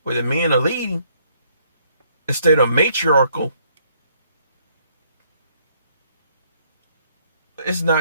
where the men are leading instead of matriarchal. It's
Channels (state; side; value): inverted; both; correlation -0.67